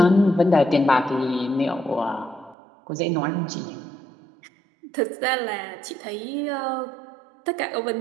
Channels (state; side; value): drops out; left; at 2.6 s